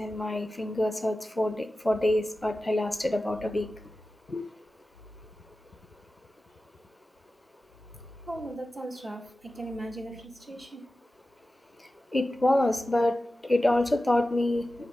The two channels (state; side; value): normal; both; correlation 0.94